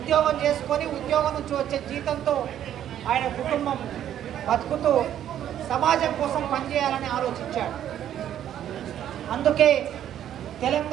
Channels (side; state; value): left; quieter; 10.7 dB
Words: చేసుకొని ఉద్యోగం నుంచి వచ్చే జీతంతో ఆయన కుటుంబం బతుకుతూ సమాజం కోసం పనిచేయాలని ఆలోచించాడు. అందుకే